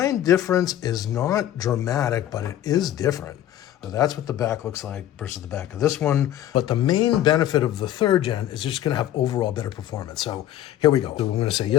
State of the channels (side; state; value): right; quieter; 12.2 dB